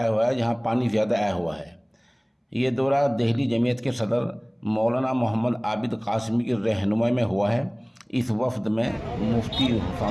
ہوا ہے، جہاں پانی زیادہ آیا ہوا ہے۔ یہ دورہ دہلی جمعیت کے صدر مولانا محمد عابد قاسمی کی رہنمائی میں ہوا ہے۔ اس وفد میں مفتی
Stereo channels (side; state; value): both; identical; correlation 1.00